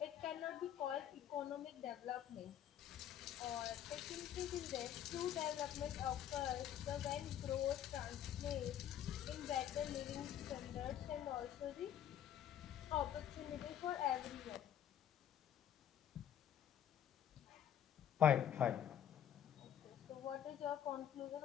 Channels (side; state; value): right; quieter; 10.1 dB